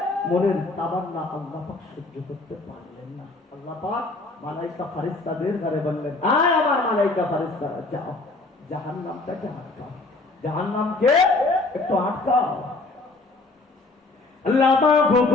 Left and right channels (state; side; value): quieter; right; 3.2 dB